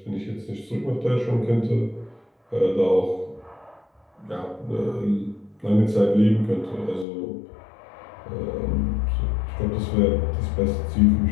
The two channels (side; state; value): right; drops out; at 7.1 s